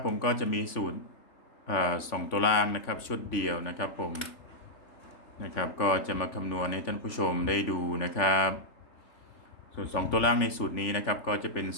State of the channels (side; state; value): right; late; 3.5 ms